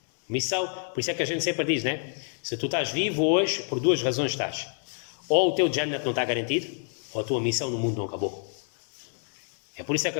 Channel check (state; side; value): silent; right; 59 dB below the other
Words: Missão, por isso é que a gente sempre diz, né? Se tu estás vivo hoje, por duas razões estás. Ou o teu Jannat não está garantido, ou a tua missão no mundo não acabou. É por isso é que